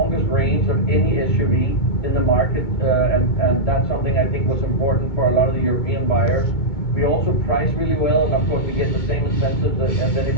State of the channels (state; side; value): late; right; 2.2 ms